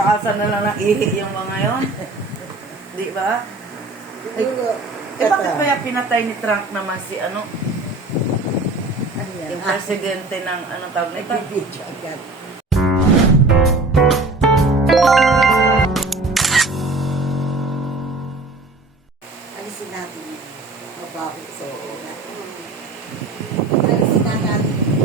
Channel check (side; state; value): left; quieter; 3.2 dB